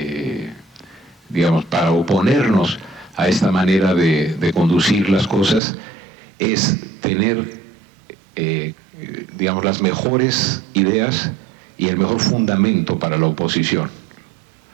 oponernos a esta manera de conducir las cosas, es tener, las mejores ideas y el mejor fundamento para la oposición.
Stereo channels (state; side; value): drops out; left; at 5.6 s